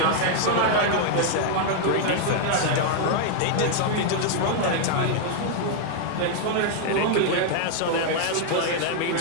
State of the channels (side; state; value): both; different; correlation 0.00